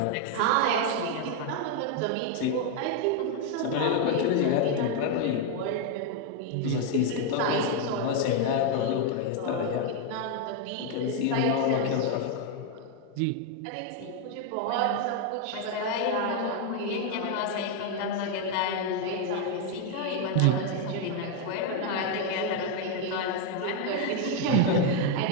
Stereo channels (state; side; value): different; both; correlation 0.01